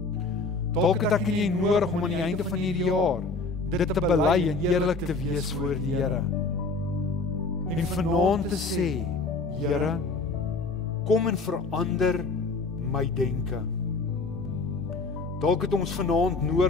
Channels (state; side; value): quieter; right; 3.7 dB